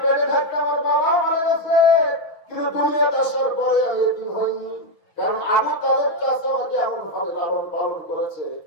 পেটে থাকতে আমার বাবা মারা গেছে, কিন্তু দুনিয়াতে আসার পরে আমি এতিম হইনি। কারণ আবু তালেব চাচা আমাকে এমন ভাবে লালন পালন করেছে,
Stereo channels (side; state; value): right; late; 6.1 ms